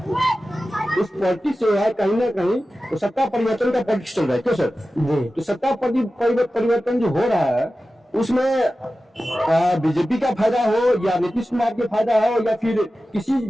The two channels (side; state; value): both; normal; correlation 0.94